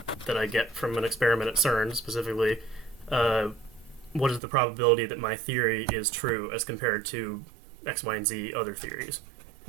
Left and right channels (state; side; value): drops out; left; at 4.4 s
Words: that I get from an experiment at CERN specifically, what is the probability that my theory is true as compared to X, Y, and Z other theories,